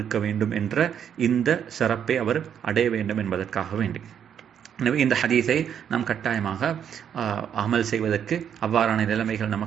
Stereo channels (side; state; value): left; quieter; 8.6 dB